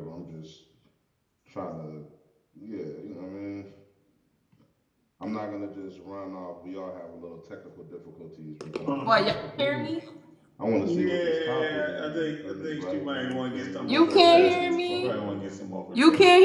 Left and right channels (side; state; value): both; identical; correlation 1.00